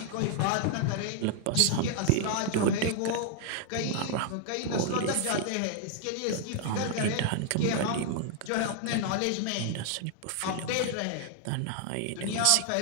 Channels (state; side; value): different; both; correlation 0.00